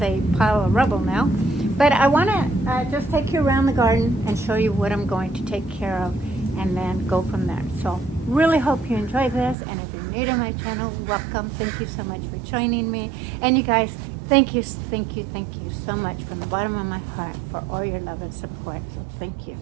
a pile of rubble now. But I want to just take you around the garden and show you what I'm going to take care of and then go from there. So really hope you enjoy this, and if you're new to my channel, welcome. Thank you so much for joining me. And you guys, thank you so much from the bottom of my heart for all your love and support. So thank you.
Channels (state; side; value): drops out; left; at 9.6 s